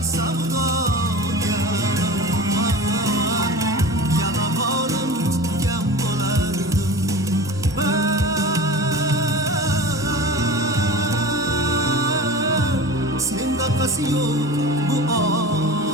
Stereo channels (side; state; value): both; normal; correlation 0.34